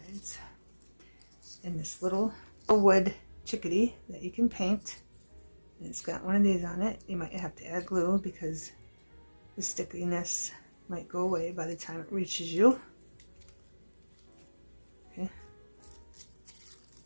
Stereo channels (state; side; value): inverted; both; correlation -1.00